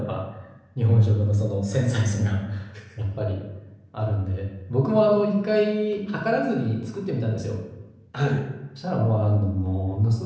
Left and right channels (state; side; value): identical; both; correlation 1.00